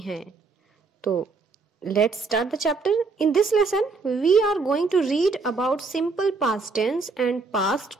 तो let's start the chapter. In this lesson we are going to read about simple past tense and past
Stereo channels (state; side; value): quieter; left; 4.2 dB